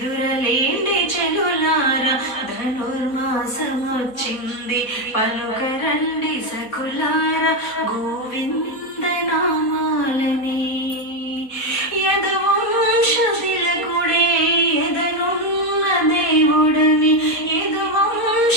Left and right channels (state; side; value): late; right; 4.1 ms